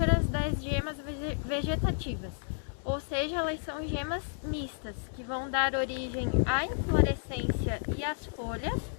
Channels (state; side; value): silent; right; digital silence